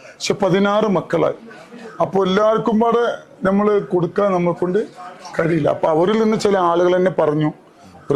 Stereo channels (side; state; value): both; identical; correlation 1.00